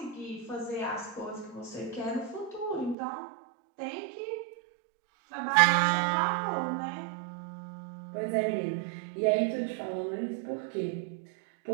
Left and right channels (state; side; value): drops out; left; at 3.0 s